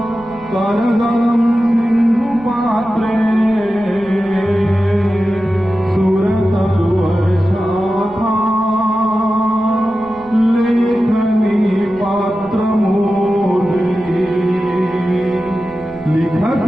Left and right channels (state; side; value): noise; right; rumble, 22 dB below the sound